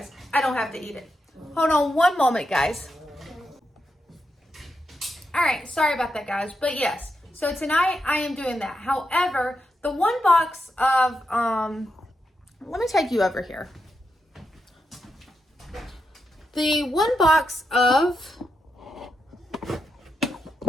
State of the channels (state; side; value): normal; both; correlation 0.85